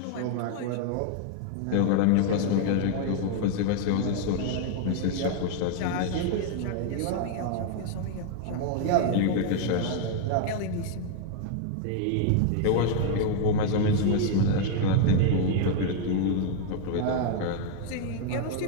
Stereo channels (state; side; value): different; both; correlation 0.00